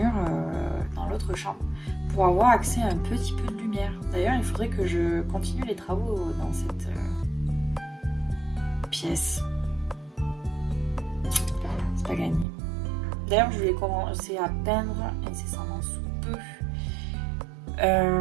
dans l'autre chambre pour avoir accès à un petit peu de lumière. D'ailleurs, il faudrait que je continue les travaux dans cette pièce. C'est pas gagné. D'ailleurs, je vais commencer à peindre incessamment sous peu.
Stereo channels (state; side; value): drops out; left; at 12.5 s